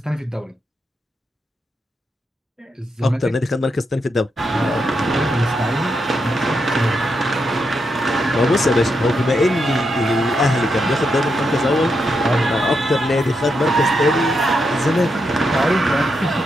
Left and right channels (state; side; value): normal; both; correlation 0.83